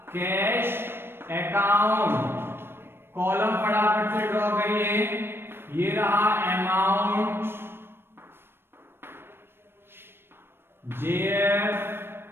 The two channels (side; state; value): left; late; 0.11 ms